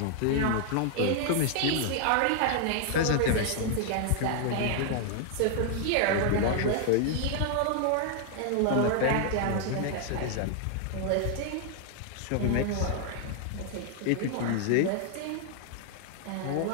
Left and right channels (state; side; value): different; both; correlation 0.00